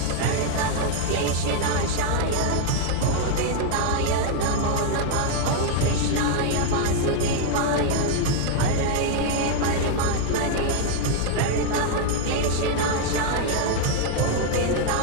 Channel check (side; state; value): both; different; correlation 0.00